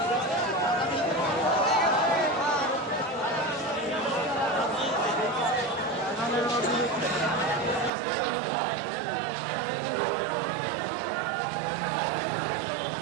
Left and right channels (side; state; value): left; drops out; at 7.9 s